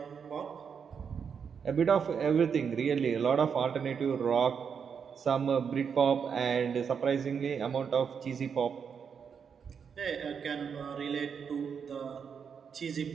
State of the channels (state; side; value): quieter; left; 6.7 dB